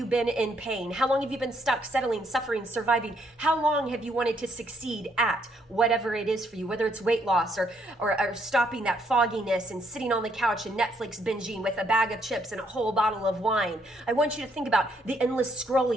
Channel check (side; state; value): both; normal; correlation 0.72